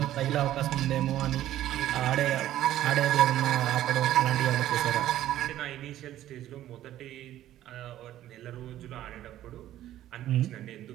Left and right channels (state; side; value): quieter; left; 13.0 dB